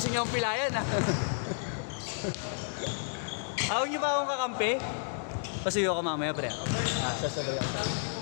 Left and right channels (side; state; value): right; silent; digital silence